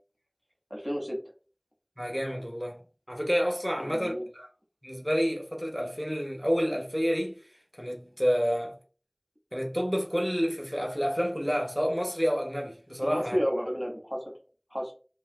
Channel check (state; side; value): identical; both; correlation 1.00